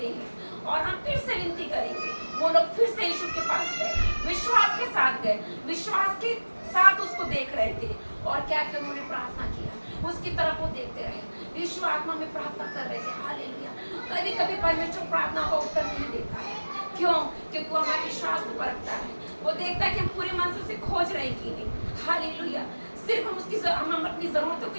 हैं और हम फिर से विनती करेंगे। वो लोग फिर से यीशु के पास गए, विश्वास के साथ गए, विश्वास के साथ उसको देख रहे थे, और क्या क्या उन्होंने प्रार्थना किया, उसकी तरफ वो देखते रहे। यीशु आत्मा में प्रार्थना कर रहे थे। हालेलुया। कभी कभी परमेश्वर प्रार्थना का उत्तर नहीं देता है। क्यों? क्योंकि वो हमारे विश्वास को परखता है, वो देखता है कि हम पूरे मन से उसे खोज रहे कि नहीं। हालेलुया। सिर्फ हम अपनी जरूरतों के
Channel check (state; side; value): inverted; both; correlation -1.00